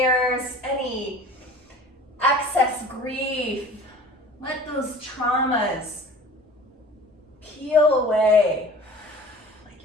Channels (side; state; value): both; normal; correlation 0.43